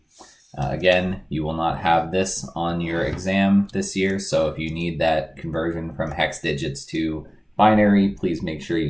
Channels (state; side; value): identical; both; correlation 1.00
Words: Again, you will not have this on your exam this year, so if you need that conversion from hex digits to binary, please make sure you